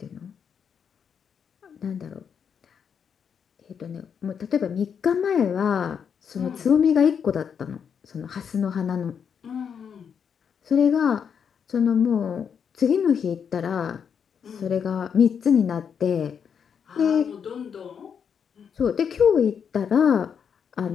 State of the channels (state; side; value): quieter; right; 7.2 dB